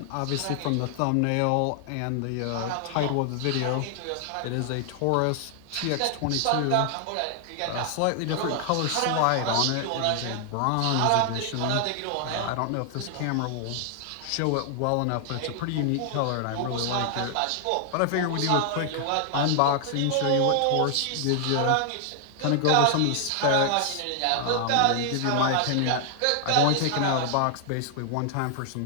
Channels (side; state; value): both; different; correlation 0.00